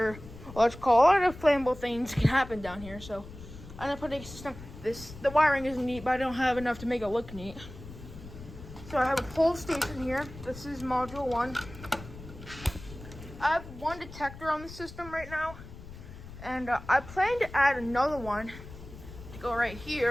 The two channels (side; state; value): left; noise; rumble, 15 dB below the sound